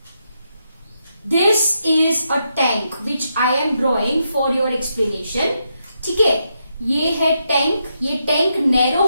This is a tank which I am drawing for your explanation. ठीक है, ये है tank. ये tank narrow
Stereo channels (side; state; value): both; inverted; correlation -0.82